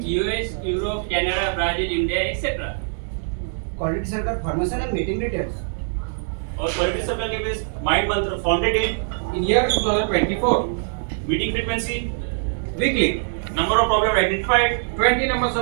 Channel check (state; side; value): silent; left; digital silence